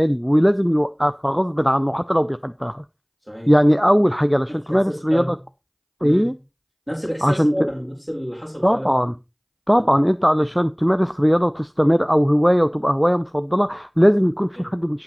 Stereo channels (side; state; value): both; identical; correlation 1.00